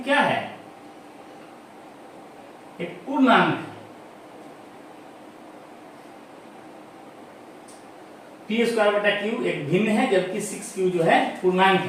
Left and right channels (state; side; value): identical; both; correlation 1.00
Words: क्या है, एक पूर्णांक है। p²/q एक भिन्न है, जबकि 6q जो है पूर्णांक